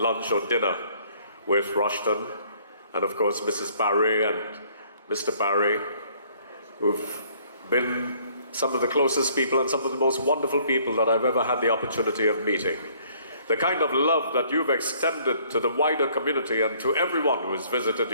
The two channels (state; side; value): inverted; both; correlation -0.61